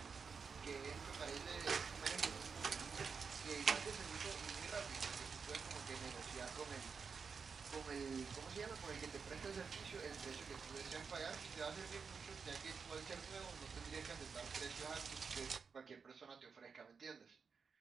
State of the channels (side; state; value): left; quieter; 5.6 dB